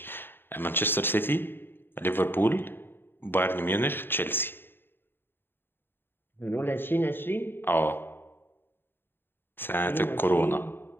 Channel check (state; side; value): late; right; 0.10 ms